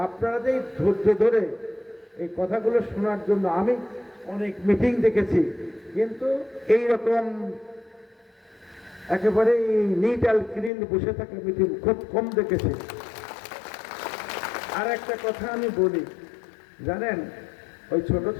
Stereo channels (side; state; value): right; drops out; at 10.7 s